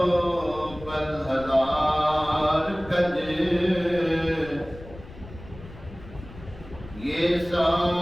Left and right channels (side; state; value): left; noise; rumble, 17 dB below the sound